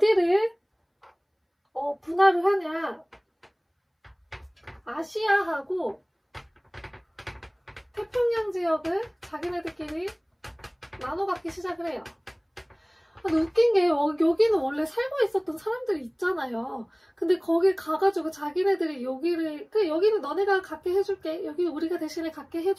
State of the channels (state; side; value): identical; both; correlation 1.00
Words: 분할을 하냐? 아시아하고 태평양 지역을 자기네들끼리 나눠 갖기 시작을 해요. 근데 웃긴 게 여기는 원래 살고 있었던 사람들이 있잖아요. 근데 거기 가가지고 자기네들이 여기를 여기는 너네가 갖게 해줄게, 여기 우리가 대신에 갖게